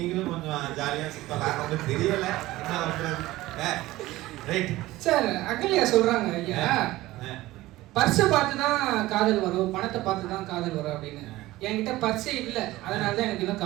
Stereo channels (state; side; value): quieter; left; 17.6 dB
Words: கொஞ்சம் ஜாலியா சுத்தலாம். உங்களுக்கு தெரியல என்ன பண்றது. Right sir. அகல்யா சொல்றாங்க, ஐயா பர்ஸை பார்த்து தான் காதல் வரும், பணத்தை பார்த்து தான் காதல் வரும் அப்படின்னு. என்கிட்ட பர்ஸே இல்ல, அதனால தான் எனக்கு இன்னும்